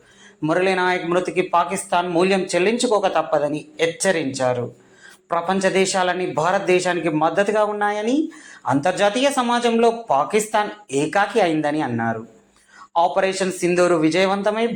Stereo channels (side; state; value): both; identical; correlation 1.00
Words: మురళీ నాయక్ మృతికి పాకిస్తాన్ మూల్యం చెల్లించుకోక తప్పదని హెచ్చరించారు. ప్రపంచ దేశాలన్నీ భారతదేశానికి మద్దతుగా ఉన్నాయని, అంతర్జాతీయ సమాజంలో పాకిస్తాన్ ఏకాకి అయిందని అన్నారు. ఆపరేషన్ సింధూరు విజయవంతమై